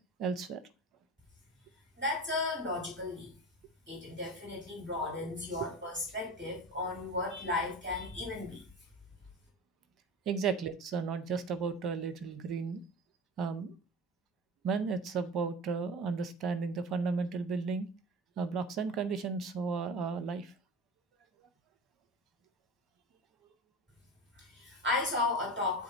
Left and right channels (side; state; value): both; normal; correlation 0.32